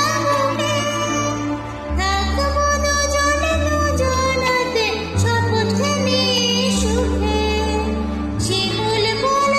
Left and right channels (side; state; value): both; identical; correlation 1.00